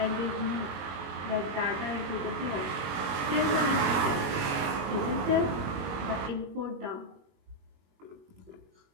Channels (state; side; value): late; left; 21 ms